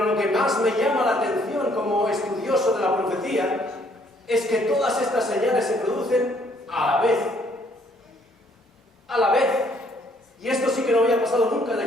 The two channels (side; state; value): both; normal; correlation 0.65